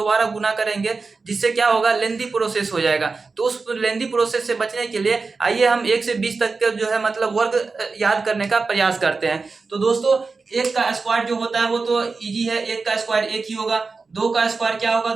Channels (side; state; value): left; quieter; 4.2 dB